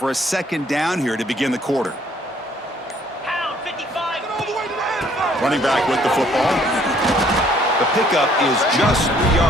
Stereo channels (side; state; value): both; normal; correlation 0.62